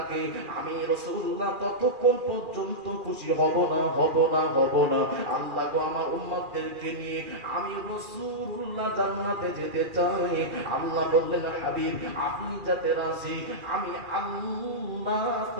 আমি রাসূলুল্লাহ ততক্ষণ পর্যন্ত খুশি হব না, হব না, হব না। আল্লাহ গো, আমার উম্মতদেরকে নিয়ে আমি রাসূলুল্লাহ জান্নাতে যেতে চাই। আল্লাহ বললেন, হাবিব, আপনি যাতে রাজি, আমি আল্লাহ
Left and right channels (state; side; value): late; left; 2.4 ms